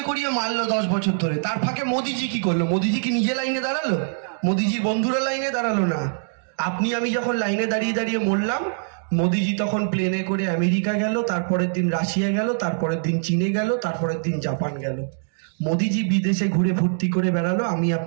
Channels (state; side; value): silent; left; digital silence